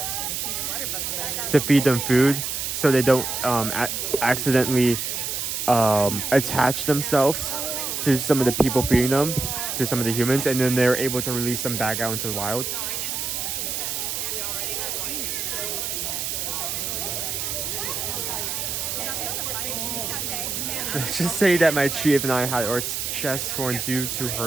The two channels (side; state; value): right; noise; hiss, 2 dB below the sound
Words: food, so they don't accidentally attach themselves to some of the people feeding them, to some of the humans, and then they're able to release them back out into the wild. Let's just say that my chief and I had our chests torn due to